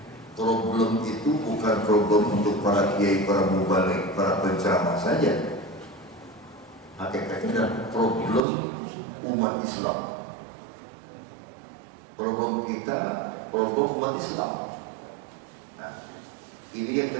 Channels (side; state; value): left; drops out; at 8.4 s